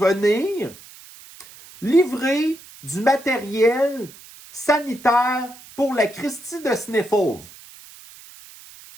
livrer du matériel sanitaire pour la Christie de Sniffles.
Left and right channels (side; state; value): right; noise; hiss, 20 dB below the sound